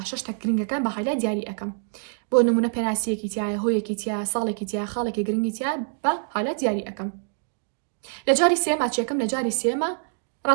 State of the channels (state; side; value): silent; left; digital silence